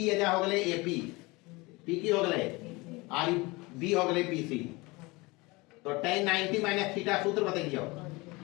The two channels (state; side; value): quieter; right; 24.0 dB